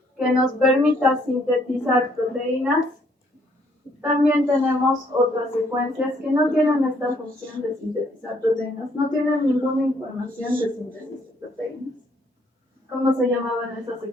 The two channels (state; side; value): normal; both; correlation 0.67